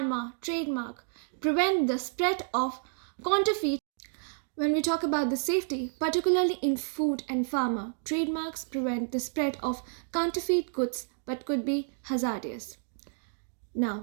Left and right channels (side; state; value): left; silent; digital silence